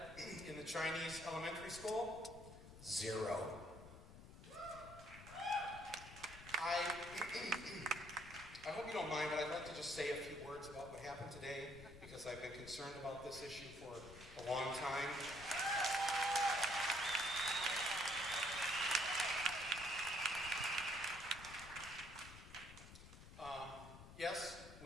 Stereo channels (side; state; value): left; noise; rumble, 15 dB below the sound